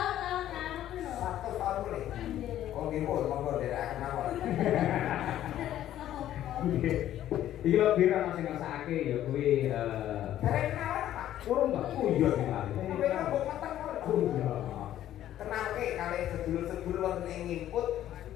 kamu lho. 100 tahun boleh. Oh, nggih, monggo derek mawon. Iki lho pira sing ngrasakake ya kuwi Derek kenalan Pak. urung Mbak. Oh iya dikali. Kowe kan mbok meteng Oh iya. kenalke kali sedulur-sedulur wonten ing ngimput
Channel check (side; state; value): right; quieter; 12.3 dB